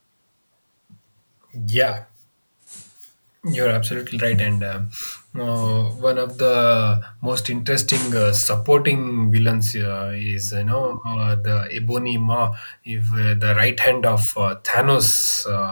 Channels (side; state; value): both; inverted; correlation -1.00